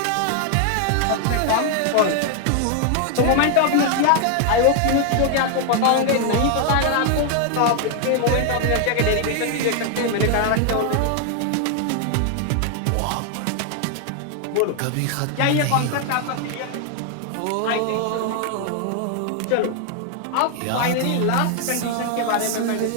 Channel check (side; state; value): both; different; correlation 0.00